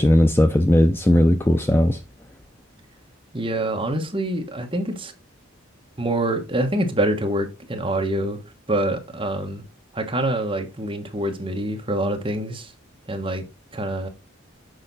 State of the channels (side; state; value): both; normal; correlation 0.76